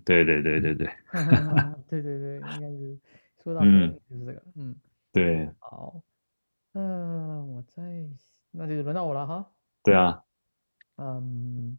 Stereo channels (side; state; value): both; inverted; correlation -1.00